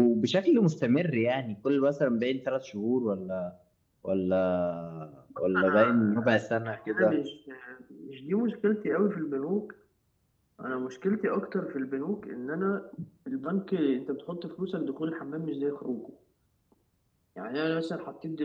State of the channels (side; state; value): both; identical; correlation 1.00